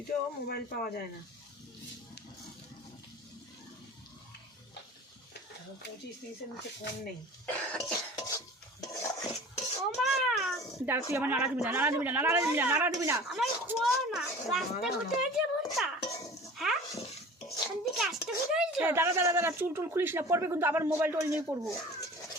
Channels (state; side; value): normal; both; correlation 0.41